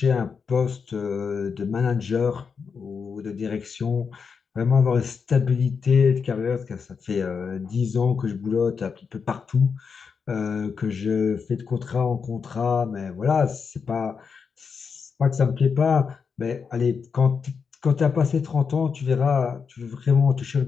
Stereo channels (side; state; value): right; quieter; 5.9 dB